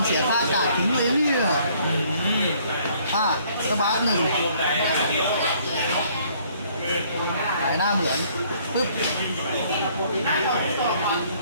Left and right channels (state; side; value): inverted; both; correlation -0.62